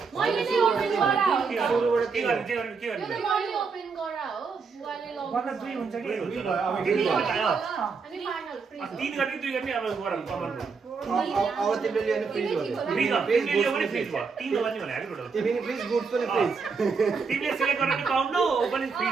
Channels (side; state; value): left; quieter; 5.1 dB